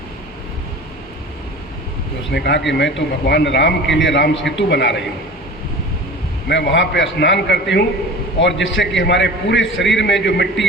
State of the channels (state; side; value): normal; both; correlation 0.37